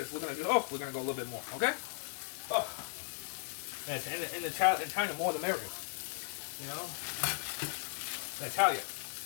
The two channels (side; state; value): right; silent; digital silence